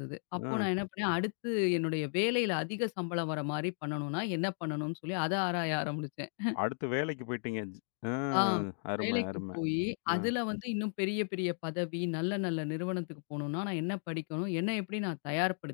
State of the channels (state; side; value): silent; right; digital silence